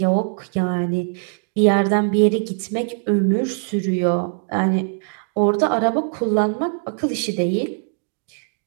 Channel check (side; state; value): left; silent; digital silence